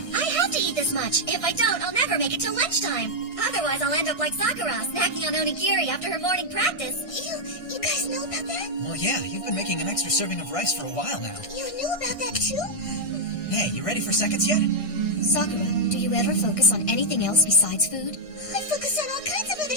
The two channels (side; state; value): right; late; 1.6 ms